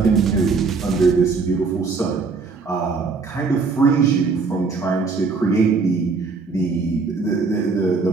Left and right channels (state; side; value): quieter; left; 4.5 dB